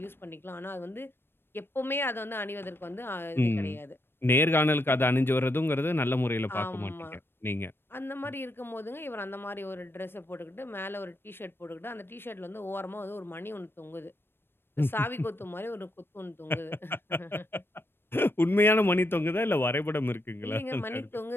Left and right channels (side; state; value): right; late; 0.10 ms